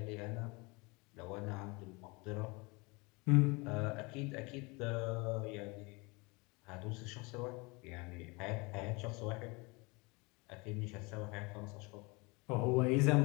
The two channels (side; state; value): right; quieter; 27.1 dB